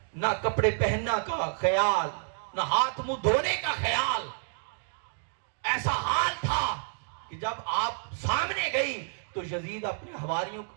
نہ کپڑے پہننا کا خیال، نہ ہاتھ منہ دھونے کا خیال، ایسا حال تھا کہ جب آپ سامنے گئی تو یزید اپنے حواریوں کو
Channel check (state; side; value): silent; left; digital silence